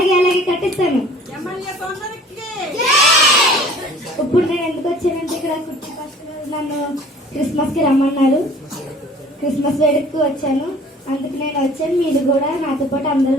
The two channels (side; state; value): both; normal; correlation 0.50